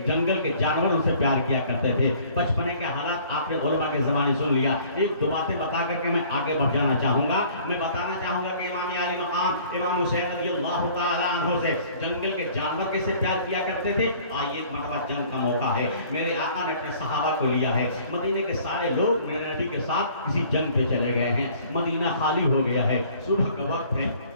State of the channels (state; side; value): inverted; both; correlation -0.53